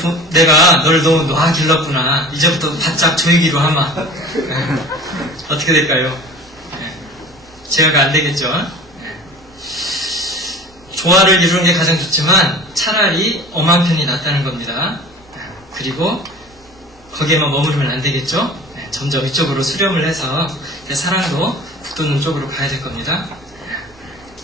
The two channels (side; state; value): both; normal; correlation 0.41